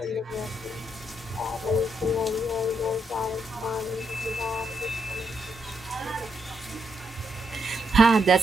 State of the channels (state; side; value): normal; both; correlation 0.79